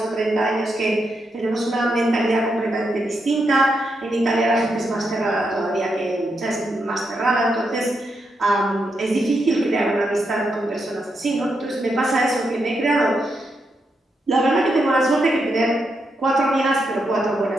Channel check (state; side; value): normal; both; correlation 0.83